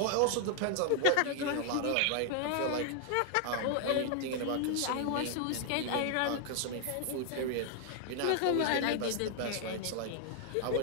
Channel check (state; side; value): different; both; correlation 0.00